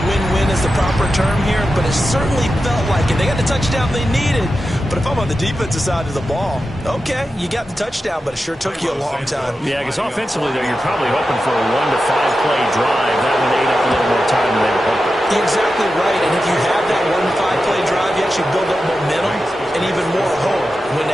is the proper term here, but it certainly felt like it. They got the touchdown they needed. But if I'm on the defensive side of the ball, okay, you got the touchdown, but it sure took you a long time. Yeah, because offensively, though, you're probably hoping for a 1 to 5 play drive. That one ate up a little more time than they were hoping. You're exactly right, and if you have that 1 to 5 play drive, you actually build up momentum and even more hope. When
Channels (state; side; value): normal; both; correlation 0.91